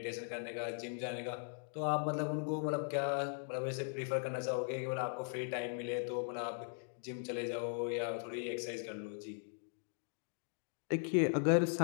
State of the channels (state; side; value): silent; right; digital silence